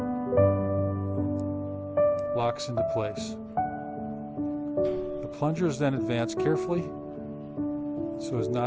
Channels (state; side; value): identical; both; correlation 1.00